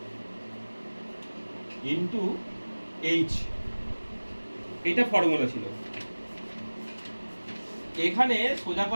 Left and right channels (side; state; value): both; inverted; correlation -1.00